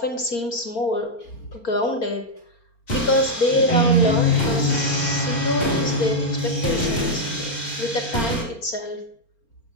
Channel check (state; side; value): late; right; 4.3 ms